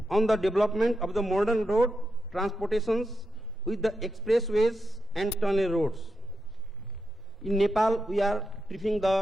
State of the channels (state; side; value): normal; both; correlation 0.86